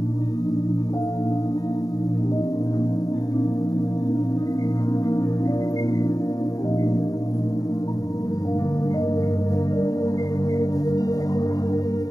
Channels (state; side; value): late; right; 0.18 ms